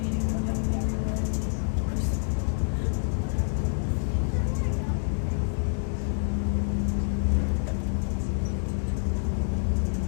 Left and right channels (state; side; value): silent; right; digital silence